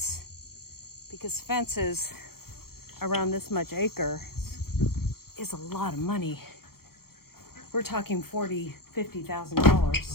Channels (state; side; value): late; right; 0.94 ms